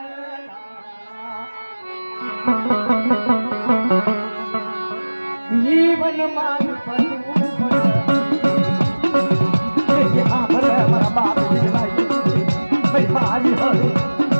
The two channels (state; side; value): inverted; both; correlation -1.00